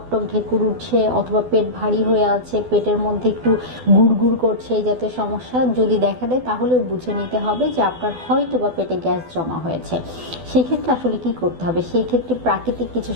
ঢেকুর উঠছে অথবা পেট ভারী হয়ে আছে, পেটের মধ্যে একটু গুড়গুড় করছে, এই জাতীয় সমস্যা যদি দেখা দেয় তাহলেও বুঝে নিতে হবে যে আপনার হয়তো বা পেটে গ্যাস জমা হয়েছে। সেই ক্ষেত্রে আসলে কি করতে হবে, সেই ক্ষেত্রে প্রাকৃতিক কিছু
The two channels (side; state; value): left; late; 12 ms